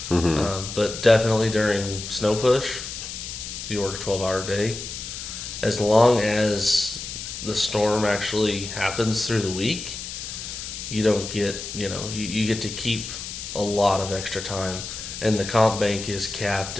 But definitely during snow push, you work a 12-hour day. As long as the storm actually happens through the week, you don't get, you get to keep a lot of extra time. And the comp bank is capped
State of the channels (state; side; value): noise; left; hiss, 8 dB below the sound